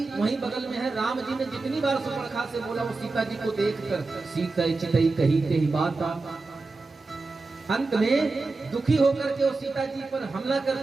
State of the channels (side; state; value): left; quieter; 3.6 dB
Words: वहीं बगल में है। राम जी ने जितनी बार सुपर्णखा से बोला, वो सीता जी को देखकर सीता चितई कही ते ही बात। अंत में दुखी होकर के वो सीता जी पर हमला